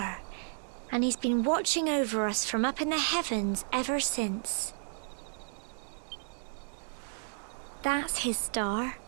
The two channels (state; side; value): silent; left; digital silence